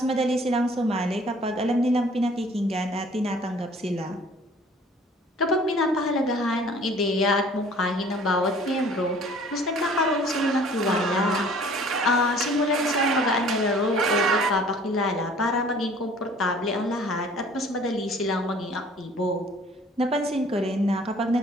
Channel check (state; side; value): normal; both; correlation 0.52